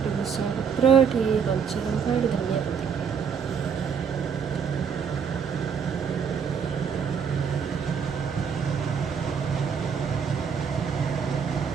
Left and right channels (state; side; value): quieter; left; 6.8 dB